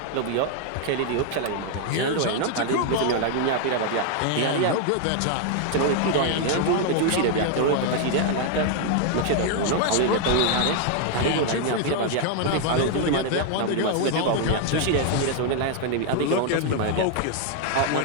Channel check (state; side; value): different; both; correlation 0.00